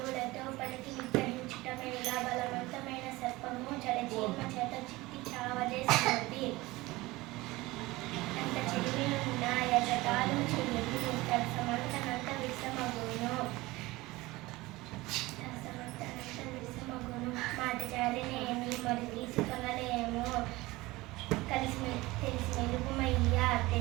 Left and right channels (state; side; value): quieter; left; 20.3 dB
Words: పలికి విగ్రహించుట మేళ బలవంతమైన సర్పము జలచీమ చేత చిక్కి చావదే సుమతి అంత చెడిమి ఉన్న యజకాలు చెయ్యదు సమంతనంత విషమగును మాట జారినేమి మరి తీసుకొనలేము కలిసి తెలిసి మెలుగుమయ్యా